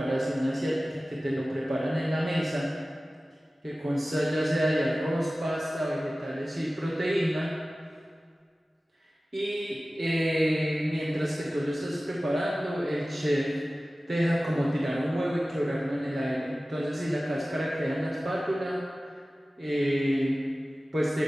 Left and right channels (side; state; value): both; normal; correlation 0.96